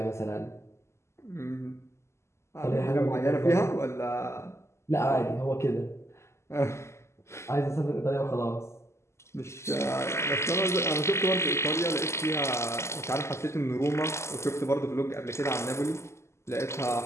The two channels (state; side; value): late; right; 0.13 ms